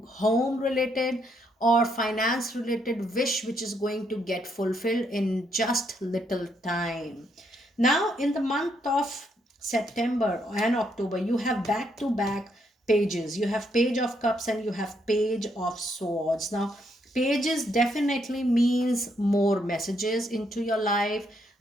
home related or finance related wish which is going to get fulfilled in just little time. Now in the month of September and October, you have back to back pages. You have Page of Cups and you have Page of Swords. Now pages definitely means more messages into your life.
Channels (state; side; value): normal; both; correlation 0.75